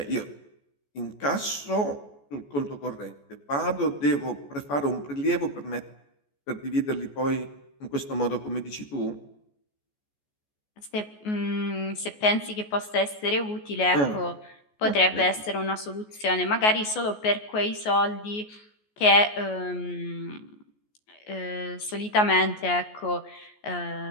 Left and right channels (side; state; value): right; late; 14 ms